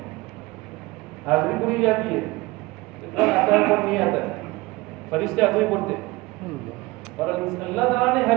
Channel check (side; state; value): left; quieter; 21.5 dB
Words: حاضری پوری جاتی ہے، اتنا آتا ہے پر نہیں آتا ہے، فرشتے حاضری پڑھتے، اور اللہ تعالیٰ نے